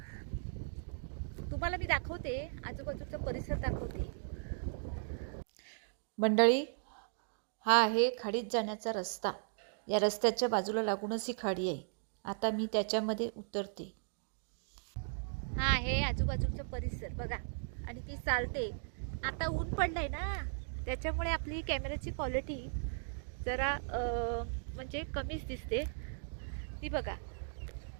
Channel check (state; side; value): silent; left; digital silence